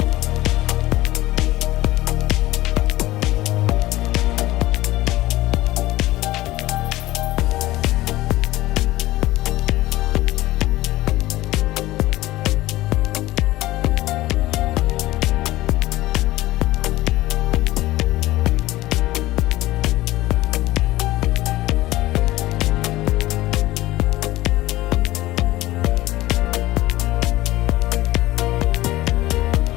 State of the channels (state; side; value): quieter; right; 17.2 dB